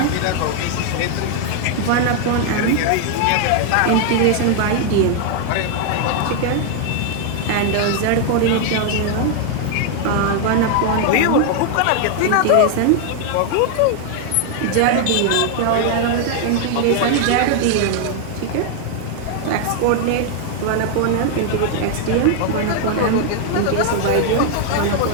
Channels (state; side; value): different; both; correlation 0.00